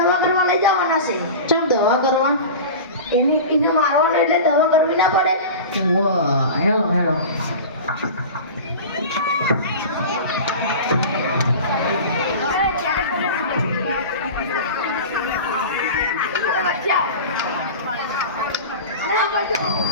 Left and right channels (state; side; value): inverted; both; correlation -0.32